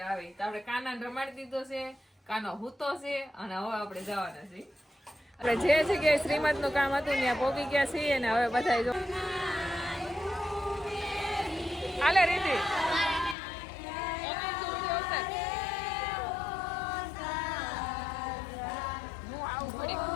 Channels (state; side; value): drops out; right; at 13.4 s